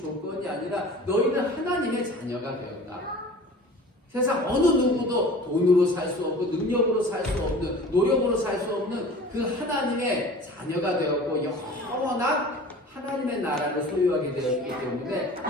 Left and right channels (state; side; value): normal; both; correlation 0.42